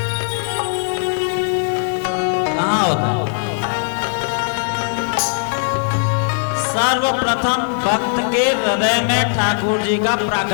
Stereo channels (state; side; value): silent; right; digital silence